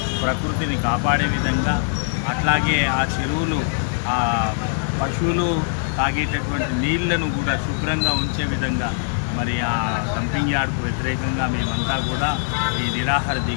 ప్రకృతిని కాపాడే విధంగా, అట్లాగే ఆ చెరువులు ఆ పశువులు తాగేటటువంటి నీళ్లను కూడా శుభ్రంగా ఉంచే విధంగా మరి ఆ డంపింగ్ యార్డుకు వ్యతిరేకంగా మేమంతా కూడా ఈ నిరాహార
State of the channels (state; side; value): silent; right; digital silence